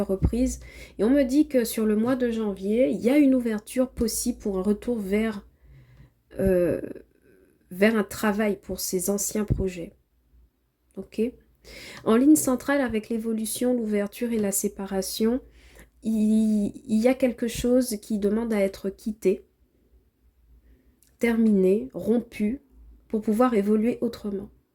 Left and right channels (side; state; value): both; identical; correlation 1.00